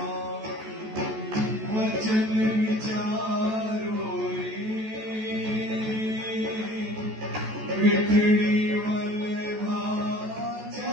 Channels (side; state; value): left; late; 14 ms